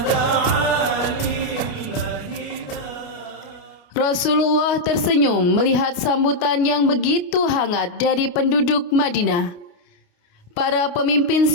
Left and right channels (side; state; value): right; late; 28 ms